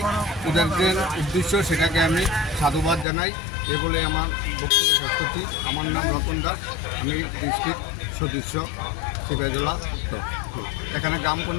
ওদের যে উদ্দেশ্য সেটাকে আমি সাধুবাদ জানাই। এগুলো আমার বক্তব্য প্রস্তুতি। আমার নাম রতন দাস, আমি ডিস্ট্রিক্ট সদস্য সিপাহীজলা। এখানে গ্রাম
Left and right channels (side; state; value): right; drops out; at 3.1 s